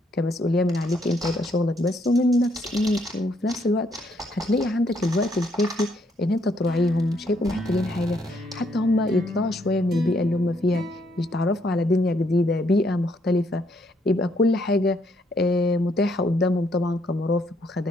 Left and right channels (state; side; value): normal; both; correlation 0.71